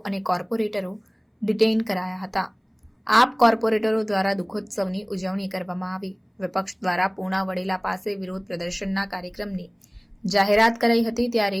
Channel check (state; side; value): identical; both; correlation 1.00